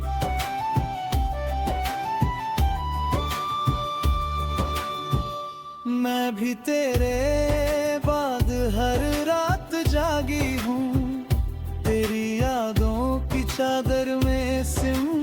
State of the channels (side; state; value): both; identical; correlation 1.00